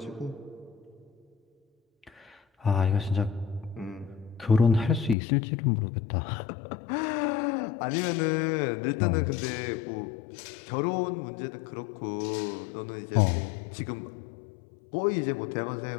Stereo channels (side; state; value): right; drops out; at 5.2 s